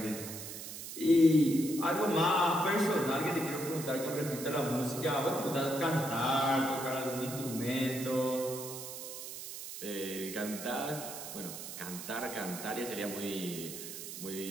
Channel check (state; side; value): noise; right; hiss, 9 dB below the sound